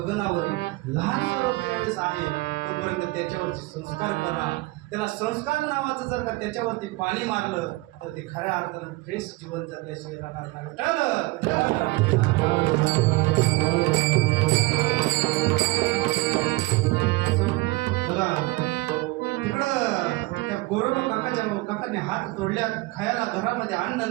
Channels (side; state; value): left; quieter; 22.1 dB